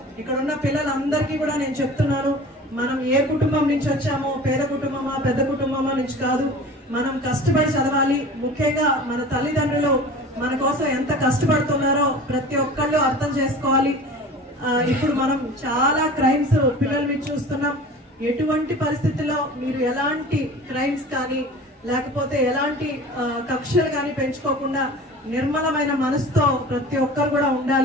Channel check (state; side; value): normal; both; correlation 0.39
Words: ఇక్కడ ఉన్న పిల్లలందరికీ కూడా నేను చెప్తున్నాను, మనం ఏ కుటుంబం నుంచి వచ్చామో, పేద కుటుంబమా పెద్ద కుటుంబమా నుంచి కాదు, మనం కష్టపడి చదవాలి. ముఖ్యంగా మన తల్లిదండ్రులు మన కోసం ఎంత కష్టపడుతున్నారో ప్రతి ఒక్కళ్ళు అర్థం చేసుకోవాలి. ఇప్పుడు మనం చాలా క్రైమ్స్ పిల్లల మీద చూస్తున్నాం. ఎటువంటి పరిస్థితుల్లో మీరు ఎలాంటి క్రైమ్స్ కానీ లేకపోతే ఎలాంటి కక్షలు కానీ పెంచుకోకుండా నిర్మలమైన మనసుతో ప్రతి ఒక్కరు కూడా